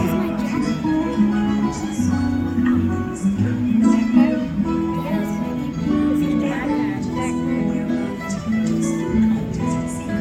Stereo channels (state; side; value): identical; both; correlation 1.00